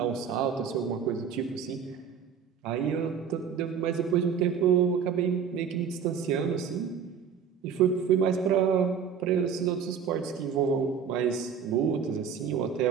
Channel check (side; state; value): left; quieter; 7.1 dB